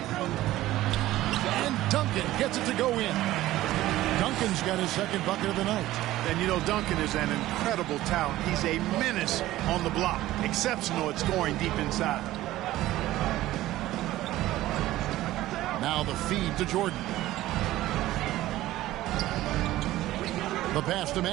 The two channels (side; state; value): left; quieter; 15.6 dB